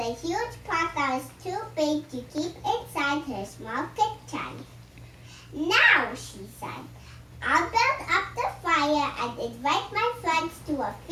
huge pot that was too big to keep inside her small kitchen. "Now," she said, "I'll build up the fire and invite my friends to a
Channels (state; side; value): identical; both; correlation 1.00